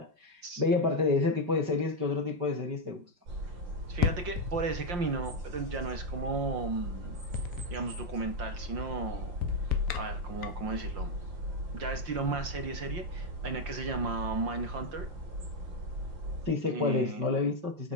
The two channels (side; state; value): left; late; 5.7 ms